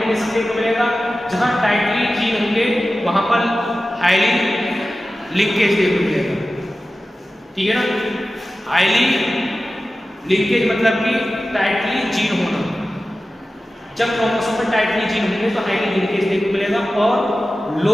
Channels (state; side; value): normal; both; correlation 0.95